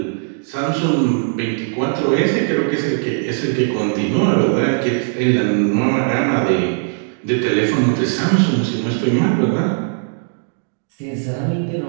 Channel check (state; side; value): silent; left; digital silence